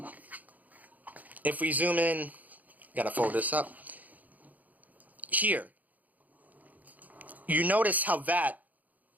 gotta fold this up, here, you notice how that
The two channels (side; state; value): left; late; 0.079 ms